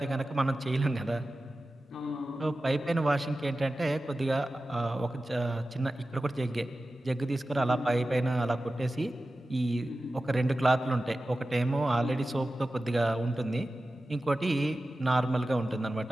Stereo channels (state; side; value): normal; both; correlation 0.94